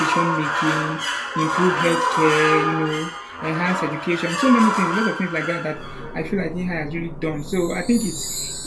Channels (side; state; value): both; identical; correlation 1.00